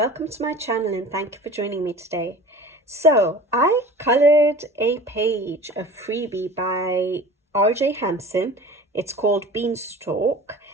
to my channel and thank you for joining me today. So I colored a page of Freebie by RJ Hampson. It's called Beanstalk,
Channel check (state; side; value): normal; both; correlation 0.40